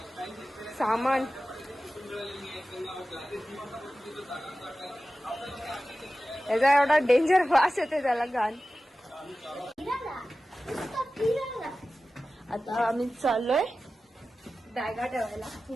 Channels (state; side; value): normal; both; correlation 0.95